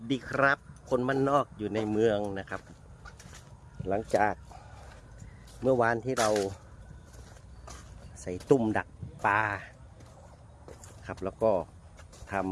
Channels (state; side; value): identical; both; correlation 1.00